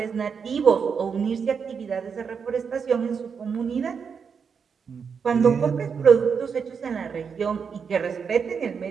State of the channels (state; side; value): quieter; left; 6.3 dB